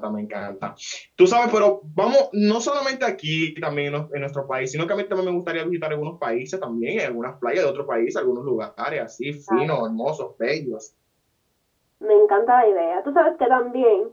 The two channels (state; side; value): identical; both; correlation 1.00